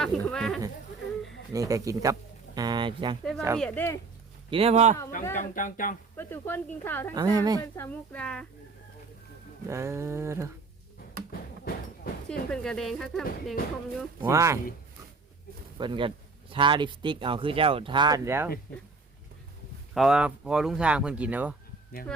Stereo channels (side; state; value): left; quieter; 3.9 dB